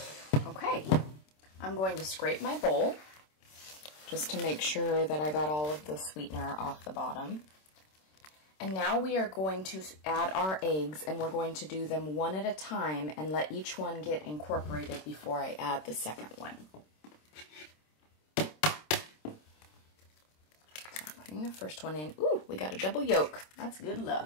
Okay. I'm going to scrape my bowl just to make sure that I got all of the sweetener off the bottom. And now we are going to add our eggs, and we're going to do them one at a time and let each one get incorporated before I add the second one. So I'm putting the first one in. Ooh, we got a double yolk. That's good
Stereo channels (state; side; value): late; right; 26 ms